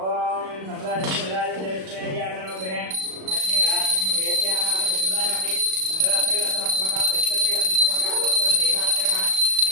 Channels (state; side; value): late; left; 37 ms